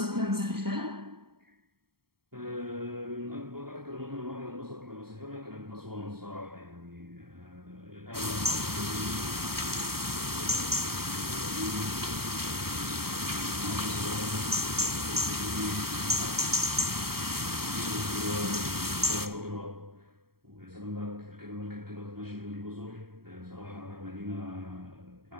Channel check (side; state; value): left; late; 0.94 ms